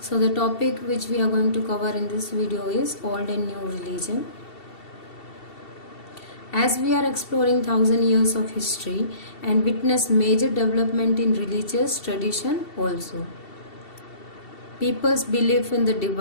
the topic which we are going to cover in this video is old and new religion. As we are exploring 1000 years of history and witness major development in religious tradition also. People's belief in the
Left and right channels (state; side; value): late; right; 2.7 ms